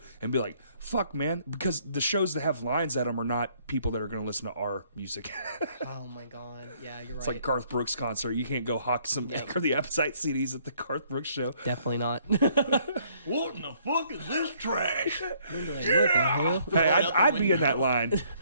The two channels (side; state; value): both; inverted; correlation -0.64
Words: and be like, fuck, man. Because the shows that have lines at them are not people that are going to listen to our music. Oh my god. Yeah, you're It's right. like Garth Brooks concert. You can't go hawk some Yep. or the Appetite CDs at the Garth Brooks show. Definitely not. What in the fuck is this trash? Like, what the hell? Hey, out the I'd be in window. that line.